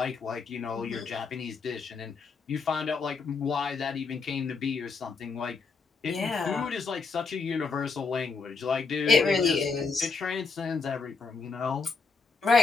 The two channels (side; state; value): right; quieter; 4.7 dB